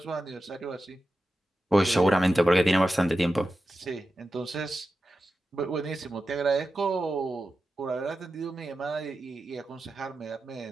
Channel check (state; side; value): normal; both; correlation 0.92